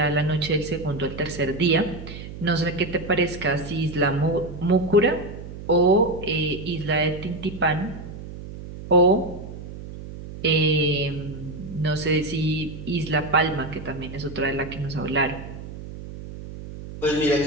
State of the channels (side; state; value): right; noise; hum, 12 dB below the sound